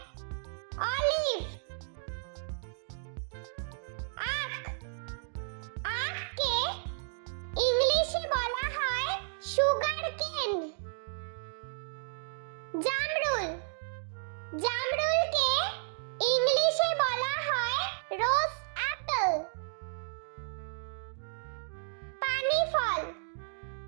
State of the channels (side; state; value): left; silent; digital silence